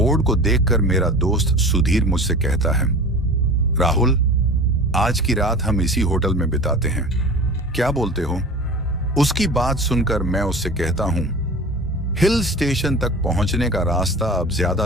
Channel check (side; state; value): both; normal; correlation 0.36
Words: को देखकर मेरा दोस्त सुधीर मुझसे कहता है, राहुल, आज की रात हम इसी होटल में बिताते हैं, क्या बोलते हो? उसकी बात सुनकर मैं उससे कहता हूं, हिल स्टेशन तक पहुंचने का रास्ता अब